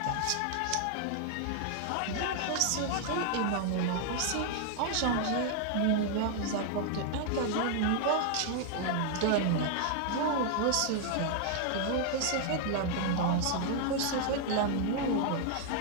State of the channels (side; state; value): both; different; correlation 0.00